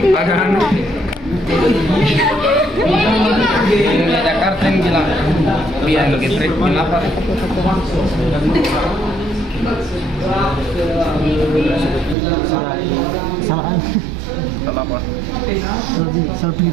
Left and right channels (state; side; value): drops out; left; at 12.2 s